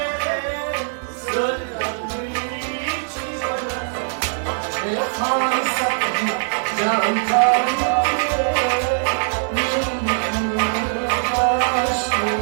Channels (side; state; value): left; silent; digital silence